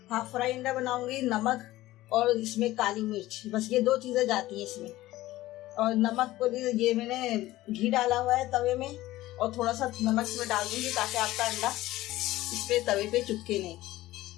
हाफ फ्राई अंडा बनाऊंगी। नमक और इसमें काली मिर्च, बस ये दो चीजें जाती हैं इसमें। और नमक को ये मैंने घी डाला हुआ है तवे में, और थोड़ा सा नमक इसमें डाल दूंगी ताकि आपका अंडा इस पे तवे पे चिपके नहीं।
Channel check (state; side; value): quieter; right; 16.6 dB